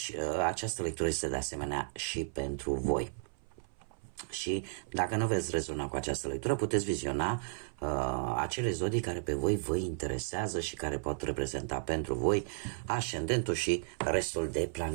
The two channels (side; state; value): left; silent; 55 dB below the other